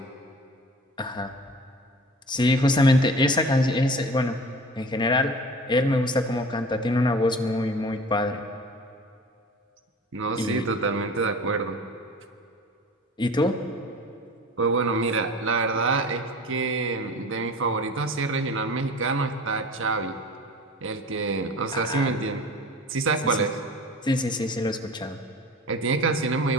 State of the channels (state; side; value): normal; both; correlation 0.40